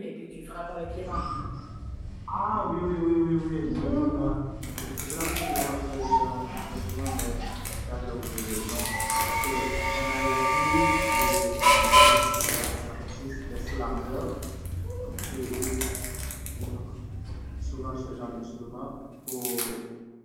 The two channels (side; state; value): both; identical; correlation 1.00